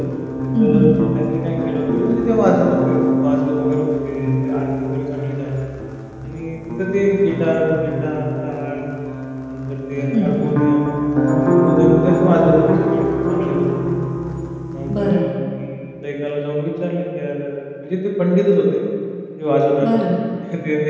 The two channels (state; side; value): identical; both; correlation 1.00